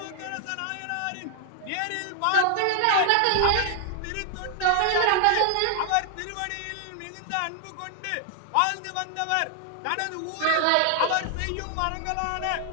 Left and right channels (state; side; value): different; both; correlation 0.00